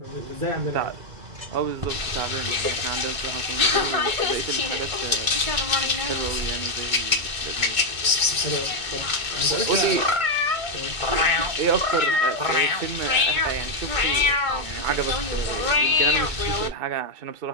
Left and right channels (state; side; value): late; left; 2.2 ms